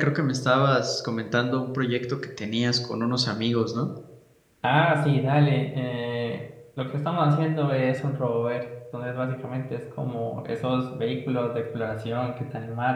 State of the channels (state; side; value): identical; both; correlation 1.00